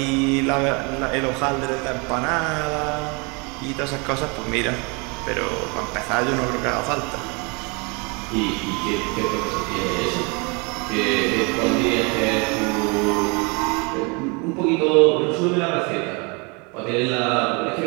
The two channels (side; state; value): left; quieter; 30.7 dB